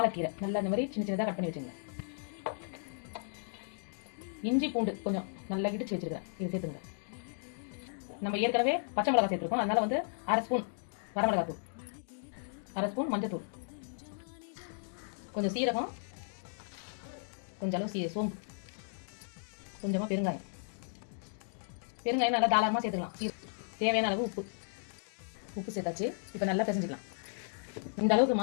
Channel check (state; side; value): silent; right; digital silence